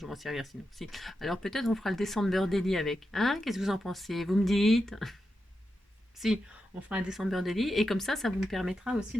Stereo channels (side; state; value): both; normal; correlation 0.88